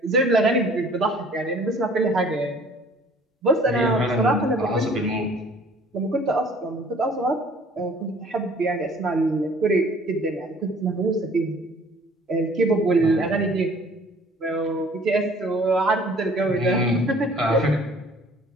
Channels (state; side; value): normal; both; correlation 0.53